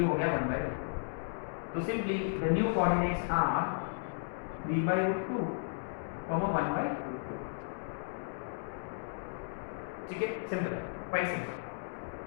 हो गया 1/√2। तो simply the new coordinates are 3/√2, 1/√2, ठीक है। Simple, quite simple.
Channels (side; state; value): right; silent; digital silence